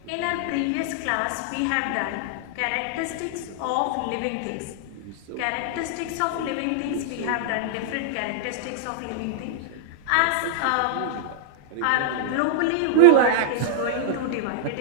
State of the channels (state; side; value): different; both; correlation -0.01